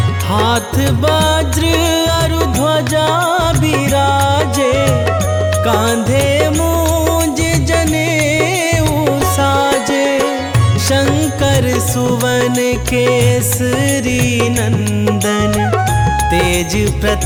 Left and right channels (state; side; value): identical; both; correlation 1.00